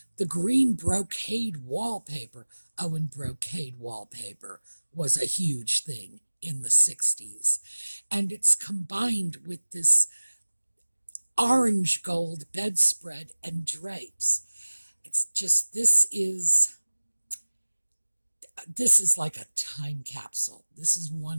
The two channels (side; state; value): both; inverted; correlation -1.00